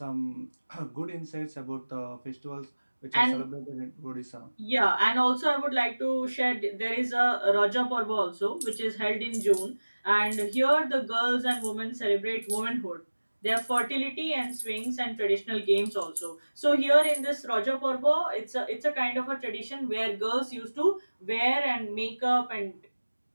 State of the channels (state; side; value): inverted; both; correlation -1.00